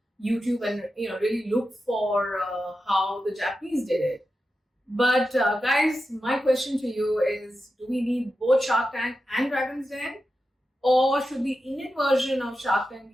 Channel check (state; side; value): normal; both; correlation 0.90